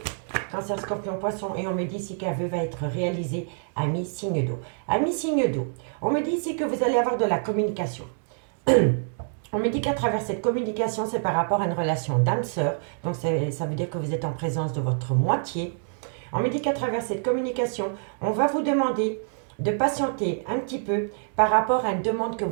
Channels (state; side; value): silent; left; digital silence